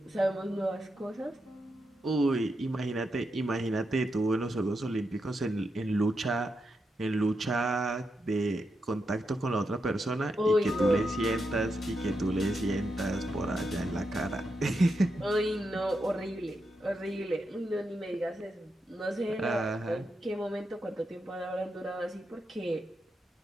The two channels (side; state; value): both; normal; correlation 0.85